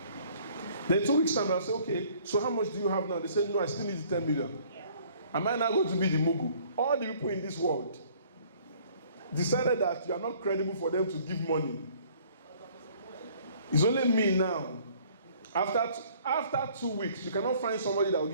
Then 2 weeks' time, I'll say, okay, so how much do you have now? They say, no, I still need 10 million. Am I now going to be the Mugu? All the people in this world decided that you are not credible for them to give money. It's only me now. After 2 weeks, you cannot find somebody that will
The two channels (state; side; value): inverted; both; correlation -0.57